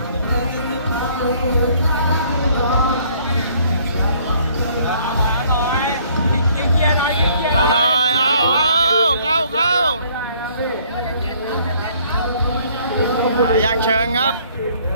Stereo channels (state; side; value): inverted; both; correlation -0.60